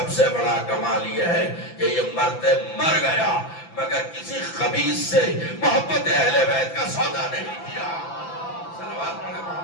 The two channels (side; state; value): right; late; 5.9 ms